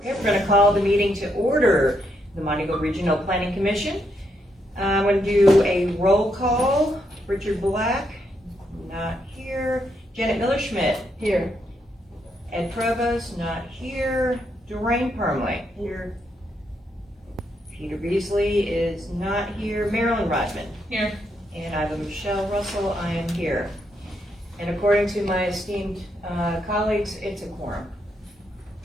We're going to call the meeting to order. The Montego Regional Planning Commission. I'm going to do a roll call. Richard Black, not here. Janet Miller-Schmidt. Here. Ed Provost, not here. Doreen Permley. Here. Peter Beasley is not here. Marilyn Rodman. Here. And I have a Michelle Russell. I am here. And according to my esteemed colleagues, it's a quorum.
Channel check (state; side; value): normal; both; correlation 0.78